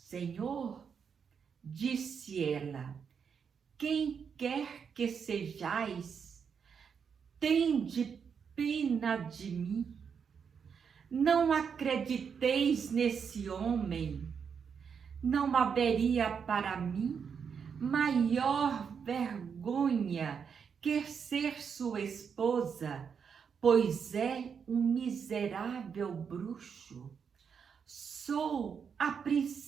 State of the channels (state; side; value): quieter; left; 6.7 dB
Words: disse ela, quem quer que sejais, tende pena de mim. Não acrediteis nesse homem. Não haveria para mim maior vergonha que ser sua esposa, pois é um miserável bruxo. Sou a